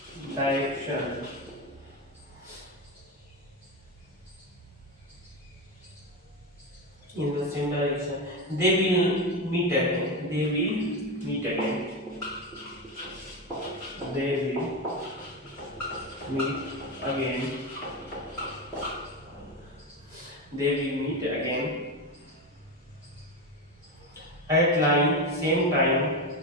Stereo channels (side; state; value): both; normal; correlation 0.16